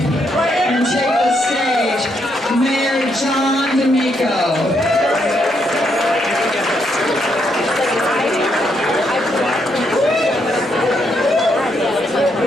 take the stage. Mayor John D'Amico.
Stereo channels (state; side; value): normal; both; correlation 0.76